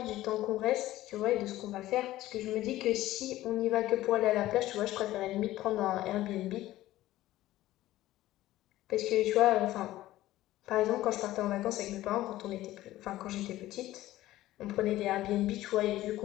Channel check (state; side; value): quieter; right; 15.5 dB